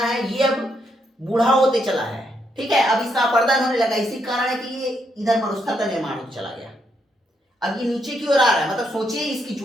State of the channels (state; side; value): normal; both; correlation 0.77